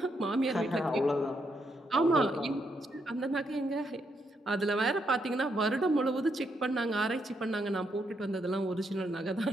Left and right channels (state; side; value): normal; both; correlation 0.78